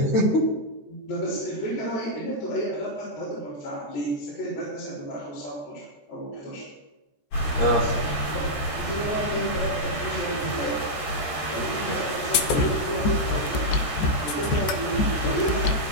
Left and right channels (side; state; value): right; late; 14 ms